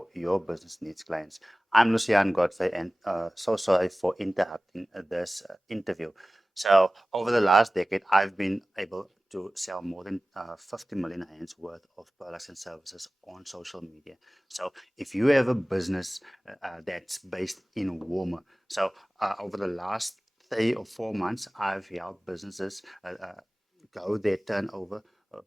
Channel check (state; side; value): normal; both; correlation 0.97